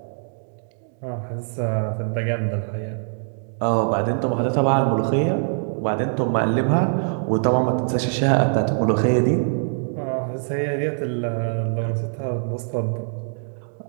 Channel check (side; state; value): left; silent; digital silence